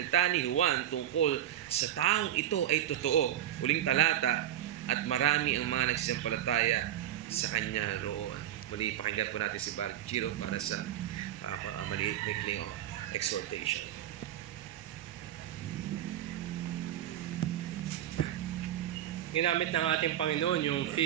ni Juan tungkol sa taong ito ay totoo." Uling talata, "At marami ang mga nagsisampalataya sa kanya roon." Muli, pakinggan po natin si Bar Giro para sa maliit maikling exhortation. Ginamit ng ating Panginoon yung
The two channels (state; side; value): quieter; left; 11.9 dB